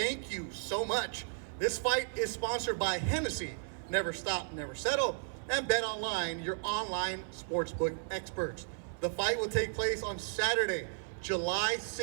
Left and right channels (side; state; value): left; silent; 55 dB below the other